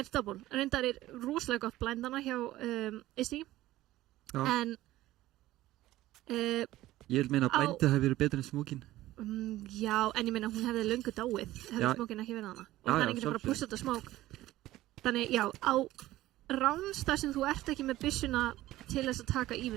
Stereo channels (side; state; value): left; quieter; 15.9 dB